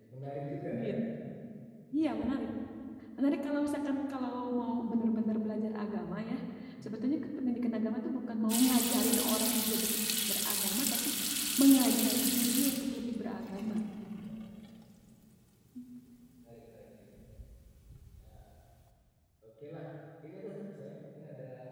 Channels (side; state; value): both; identical; correlation 1.00